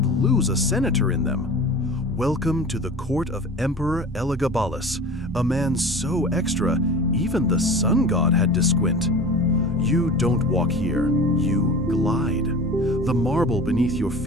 lose a senator in them. Welcome to the court of Emperor Elagabalus, a man so extra, even the sun god had to squint. You don't walk here, you glide. The marble beneath your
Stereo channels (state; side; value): normal; both; correlation 0.36